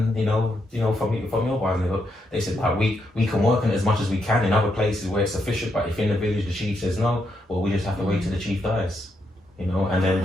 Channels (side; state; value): both; normal; correlation 0.80